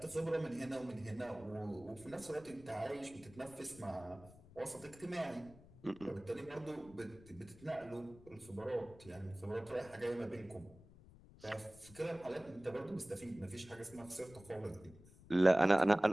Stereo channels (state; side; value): noise; left; rumble, 21 dB below the sound